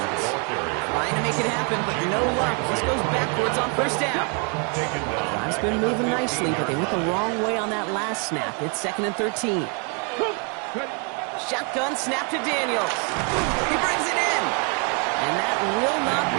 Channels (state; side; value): quieter; left; 37.1 dB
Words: Trying to make it happen, but no luck. This goes backwards on first down. Drive's been moving nicely, but they went the wrong way on that last snap. It's 2nd and 13. Shotgun snap to Daniels. He brings it in. And that will not